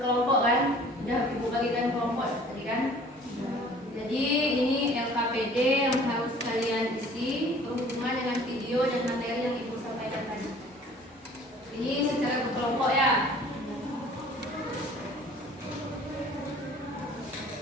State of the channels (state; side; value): normal; both; correlation 0.50